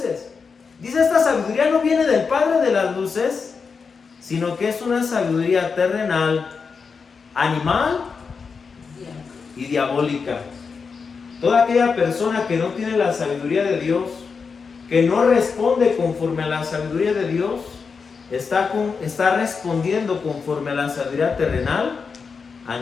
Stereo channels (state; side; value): quieter; right; 5.3 dB